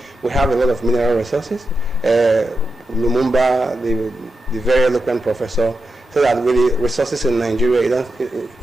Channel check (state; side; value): normal; both; correlation 0.87